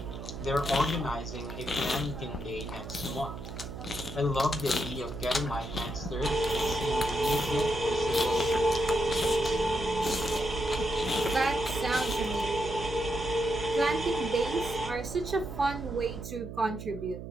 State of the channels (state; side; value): noise; right; hum, 9 dB below the sound